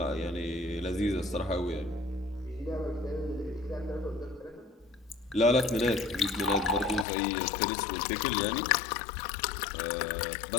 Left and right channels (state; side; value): drops out; right; at 7.1 s